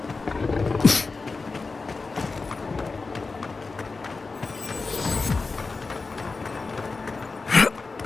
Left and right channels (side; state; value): right; quieter; 4.0 dB